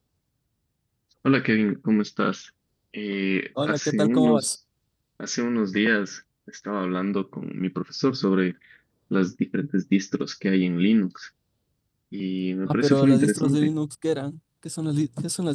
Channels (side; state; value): both; identical; correlation 1.00